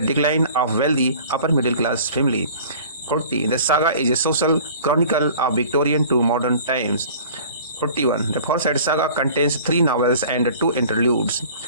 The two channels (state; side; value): inverted; both; correlation -0.46